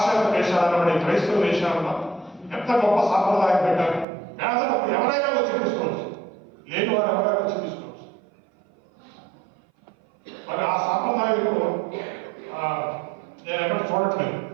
దేశాలలో పడే క్రైస్తవ దేశాలలో ఎంత గొప్ప సాంప్రదాయం పెట్టారు. పేదలకు ఎవరైనా వచ్చి తీసుకోవచ్చు, లేని వారు ఎవరైనా వచ్చి తీసుకోవచ్చు. మరి ఆ సాంప్రదాయంలో నేను ఎక్కడ చూడట్లేదు.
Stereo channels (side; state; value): left; drops out; at 4.0 s